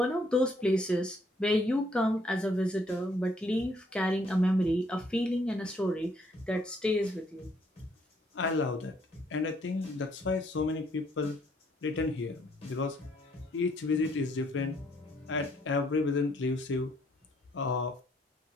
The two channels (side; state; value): both; normal; correlation 0.67